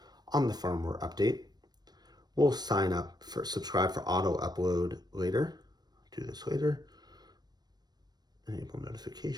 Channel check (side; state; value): left; late; 0.19 ms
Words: on the firmware update. We'll subscribe for auto upload later. Do this later. Enable